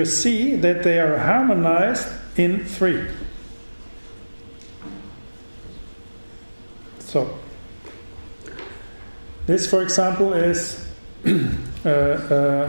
see that they are harmonized in 3. So, this, for example, is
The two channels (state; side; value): inverted; both; correlation -1.00